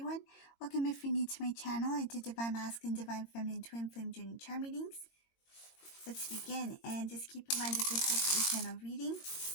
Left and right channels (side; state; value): right; late; 22 ms